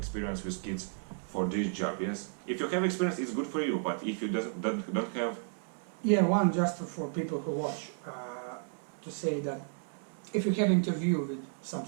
with kids for this job. Yes, if you have experience, it's good for you. But if you don't have, one just for people who watch, to say that if you have interview with some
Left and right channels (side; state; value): left; silent; 56 dB below the other